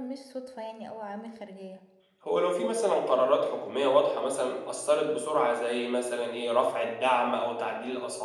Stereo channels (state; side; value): identical; both; correlation 1.00